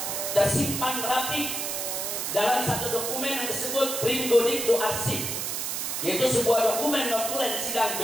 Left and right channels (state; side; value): noise; right; hiss, 2 dB below the sound